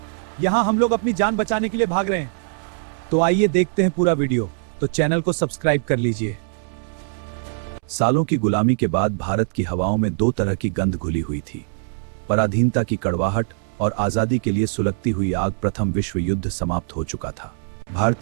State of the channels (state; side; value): silent; left; 64 dB below the other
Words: यहां हम लोग अपनी जान बचाने के लिए भाग रहे हैं। तो आइए देखते हैं पूरा वीडियो। तो चैनल को सब्सक्राइब कर लीजिए। सालों की गुलामी के बाद भारत की हवाओं में दो तरह की गंध घुली हुई थी, पराधीनता की कड़वाहट और आजादी के लिए सुलगती हुई आग। प्रथम विश्व युद्ध समाप्त हो चुका था।